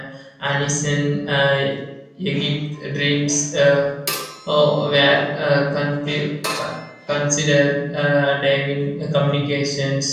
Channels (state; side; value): identical; both; correlation 1.00